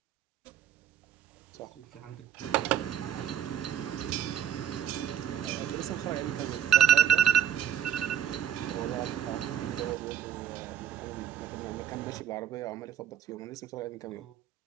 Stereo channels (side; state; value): left; quieter; 9.9 dB